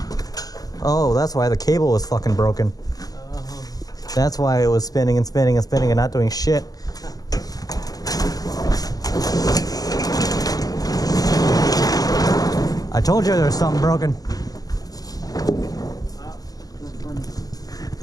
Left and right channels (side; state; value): right; late; 0.18 ms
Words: Oh, that's why the cable was fucking broken. That's why it was spinning and spinning and spinning and not doing shit. I told you there was something broken. That's funny.